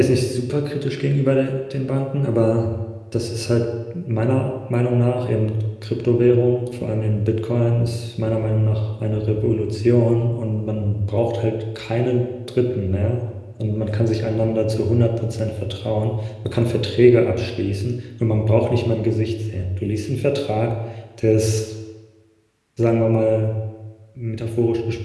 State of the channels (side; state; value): both; identical; correlation 1.00